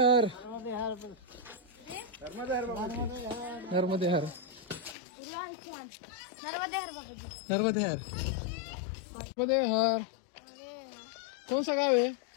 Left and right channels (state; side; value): drops out; right; at 5.0 s